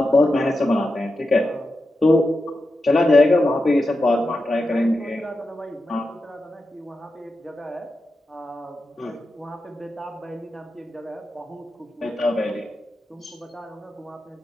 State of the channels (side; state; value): both; normal; correlation 0.90